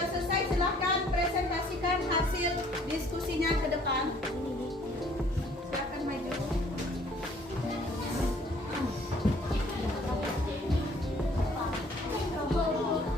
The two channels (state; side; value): normal; both; correlation 0.58